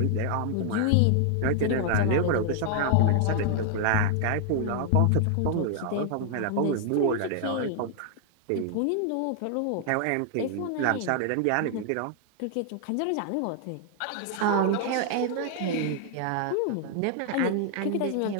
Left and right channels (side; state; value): both; different; correlation 0.00